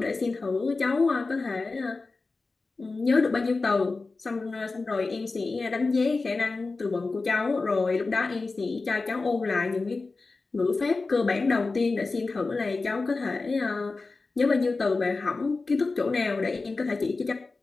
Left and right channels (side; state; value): right; quieter; 3.8 dB